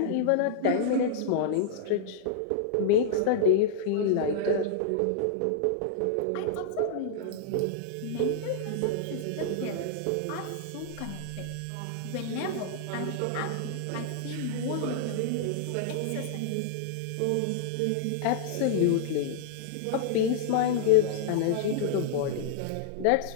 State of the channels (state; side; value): different; both; correlation -0.02